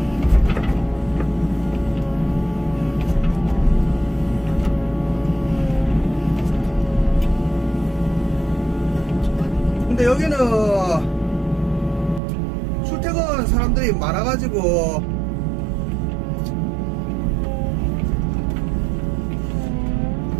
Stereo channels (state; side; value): drops out; left; at 12.2 s